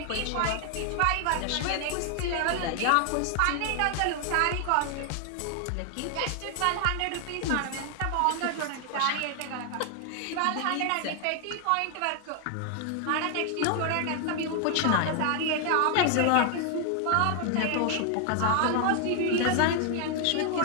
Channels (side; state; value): both; different; correlation 0.00